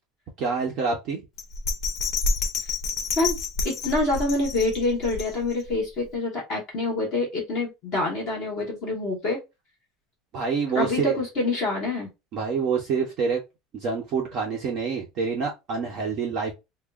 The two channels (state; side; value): normal; both; correlation 0.32